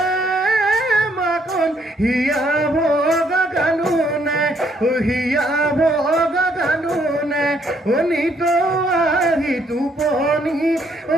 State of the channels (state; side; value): normal; both; correlation 0.69